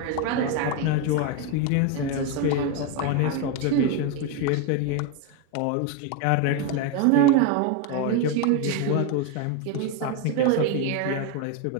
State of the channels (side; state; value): both; different; correlation 0.02